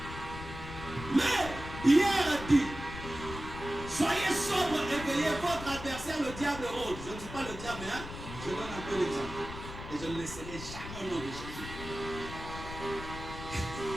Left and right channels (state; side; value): noise; left; rumble, 10 dB below the sound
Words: Mais Pierre a dit, soyez sobre et veillez, votre adversaire, le diable rôde. Je ne dis pas le diable, hein? Je donne un peu l'exemple. Et je ne laisserai jamais au nom de Jésus.